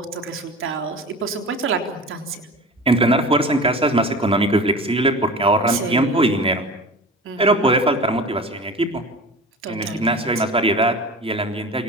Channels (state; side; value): normal; both; correlation 0.36